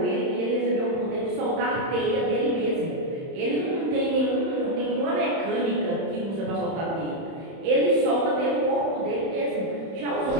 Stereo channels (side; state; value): left; late; 31 ms